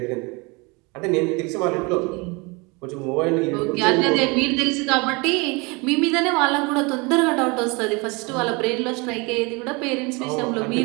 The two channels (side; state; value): left; quieter; 27.8 dB